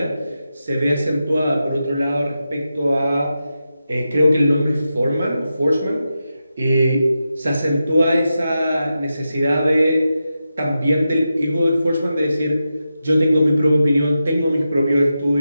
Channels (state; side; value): inverted; both; correlation -0.89